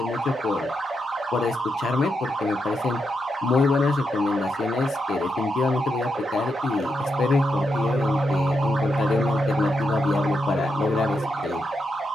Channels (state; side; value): normal; both; correlation 0.83